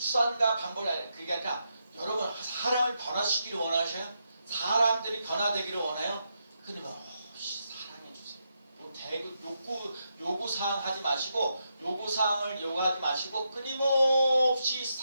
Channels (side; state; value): both; inverted; correlation -0.83